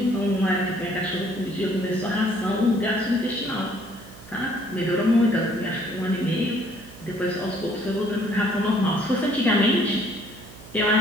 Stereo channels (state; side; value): noise; right; hum, 19 dB below the sound